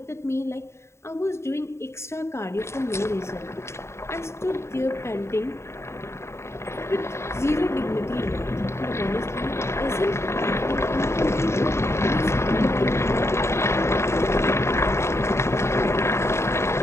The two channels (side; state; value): right; late; 0.13 ms